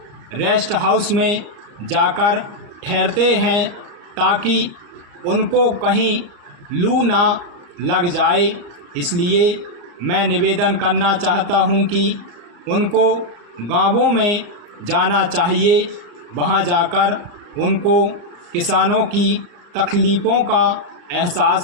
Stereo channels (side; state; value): left; late; 34 ms